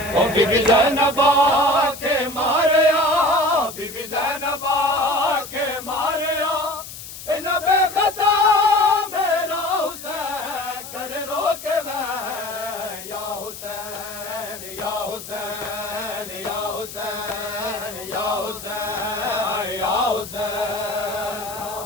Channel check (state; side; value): noise; left; hiss, 12 dB below the sound